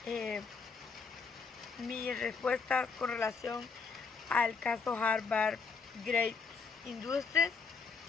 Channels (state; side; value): quieter; right; 5.0 dB